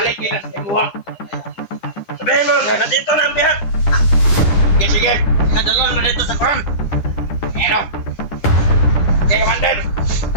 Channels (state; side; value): late; right; 9.9 ms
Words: nila sa imuha. Sabihin mo, nandito na ang bihag. Sige, sige. Nadalon mo dito sa koron. Ano? Okay, Commander.